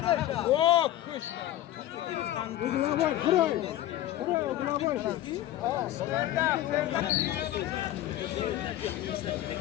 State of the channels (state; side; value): quieter; right; 13.6 dB